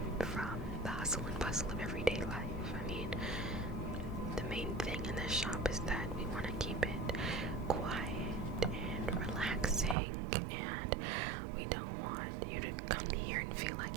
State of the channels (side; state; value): left; drops out; at 10.0 s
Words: from the hustle and bustle of everyday life. I mean, the main thing in this shop is that we want to keep it quiet and relaxing, and we don't want you to come here and feel